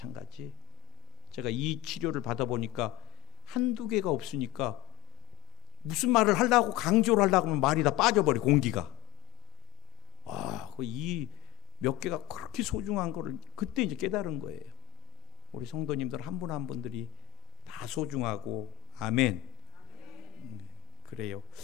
제가 이 치료를 받아보니까 한두 개가 없으니까 무슨 말을 하려고 강조를 하려고 하면 말이 다 빠져버려, 공기가. 이 몇 개가 그렇게 소중한 거를 그때 이제 깨달은 거예요. 우리 성도님들 한 분 한 분들이 다 소중하고. 아멘. 그래요.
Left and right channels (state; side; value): quieter; right; 20.6 dB